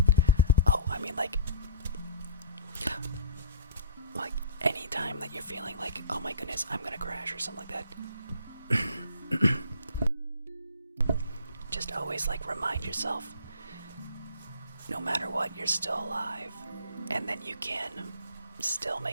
Oh, I mean, like anytime that you're feeling like, oh my goodness, I'm gonna crash or something like that, just always like remind yourself, no matter what, you're still alive, and then you can still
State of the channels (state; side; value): inverted; both; correlation -0.45